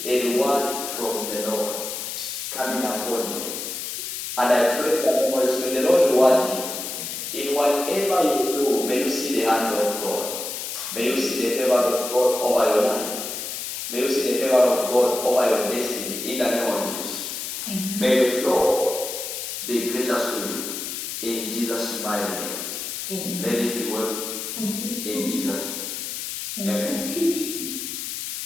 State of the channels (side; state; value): left; noise; hiss, 6 dB below the sound